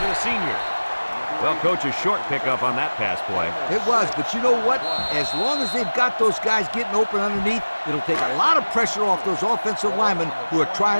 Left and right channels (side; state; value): both; inverted; correlation -1.00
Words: to the senior. Well, coach, a short pickup on that pass play. It was, but you know what? As long as they've got those guys getting open underneath, it'll take a lot of pressure off those offensive linemen who are